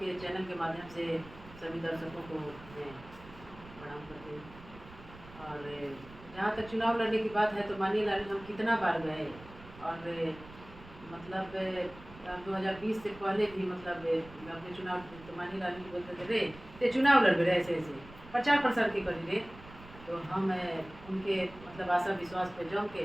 चैनल के माध्यम से सभी दर्शकों को मैं प्रणाम करती हूँ। और जहाँ तक चुनाव लड़ने की बात है तो मानिए लाल हम कितना बार गए और मतलब 2020 से पहले भी मतलब अपने चुनाव तो मानिए लाल जी बोलते थे रे ते चुनाव लड़ रहे ऐसे ऐसे प्रचार प्रसार के करी रे। तो हम उनके मतलब आशा विश्वास पे जम के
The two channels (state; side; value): noise; right; rumble, 19 dB below the sound